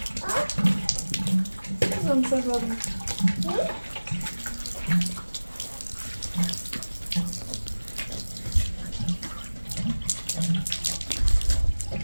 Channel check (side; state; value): both; inverted; correlation -1.00